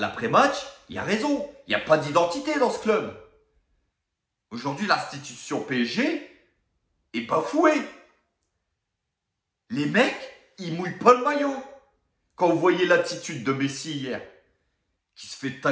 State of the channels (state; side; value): identical; both; correlation 1.00